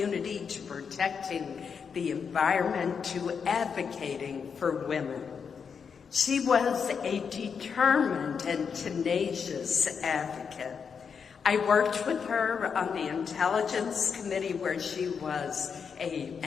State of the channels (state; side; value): quieter; right; 6.3 dB